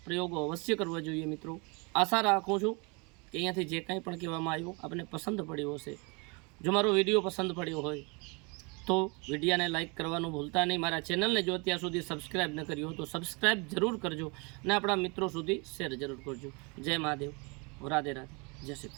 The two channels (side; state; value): left; quieter; 30.6 dB